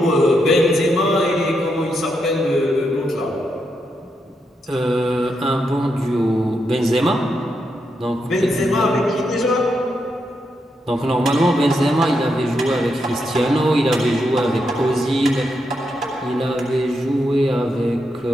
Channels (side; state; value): both; normal; correlation 0.82